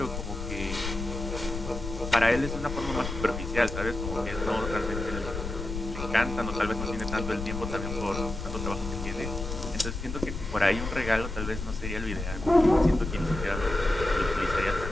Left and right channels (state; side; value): noise; left; rumble, 6 dB below the sound